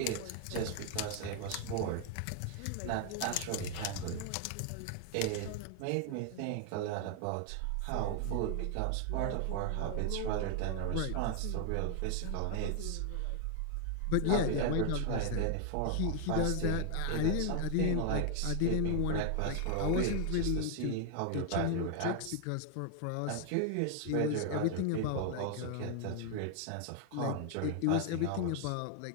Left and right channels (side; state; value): both; different; correlation 0.00